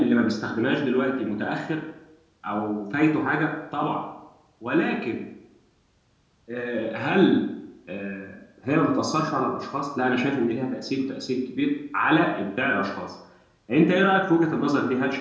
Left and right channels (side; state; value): both; identical; correlation 1.00